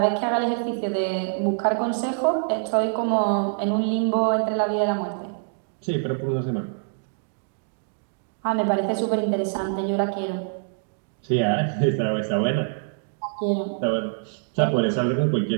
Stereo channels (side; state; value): left; silent; digital silence